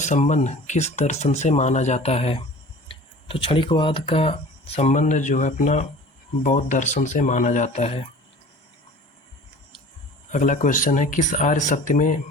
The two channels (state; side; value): late; right; 1.2 ms